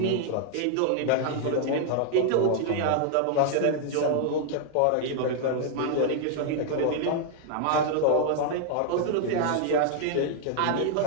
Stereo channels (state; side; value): different; both; correlation 0.00